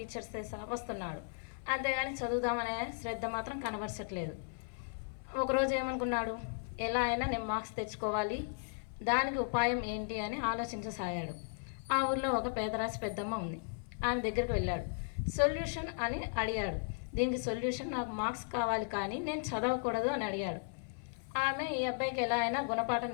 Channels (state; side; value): silent; right; 54 dB below the other